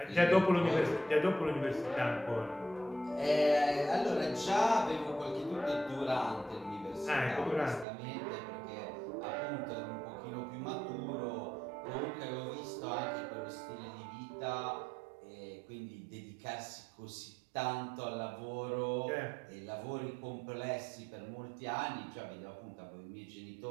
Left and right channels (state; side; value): drops out; left; at 7.9 s